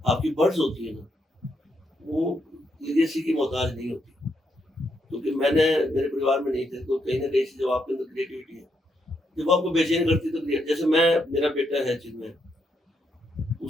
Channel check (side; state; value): both; normal; correlation 0.79